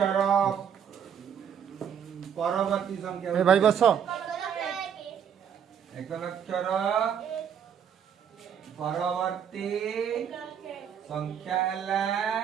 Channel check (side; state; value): left; quieter; 8.2 dB